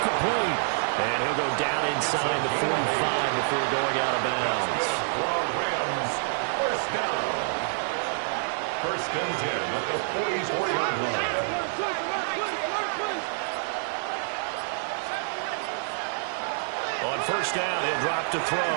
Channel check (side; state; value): left; silent; digital silence